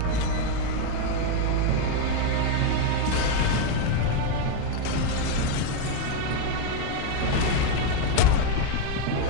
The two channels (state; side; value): different; both; correlation 0.01